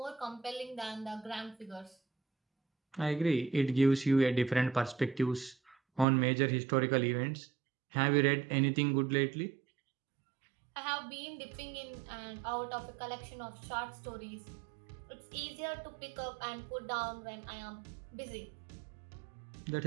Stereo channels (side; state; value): left; drops out; at 6.1 s